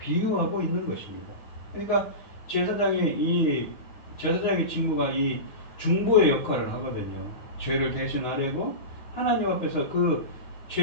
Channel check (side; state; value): right; late; 9.4 ms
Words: 있는 것입니다. 그러니까 제사장의 직무가 이 중보의 역할을 하거든요. 죄를 대신하려고 하나님 앞에서 그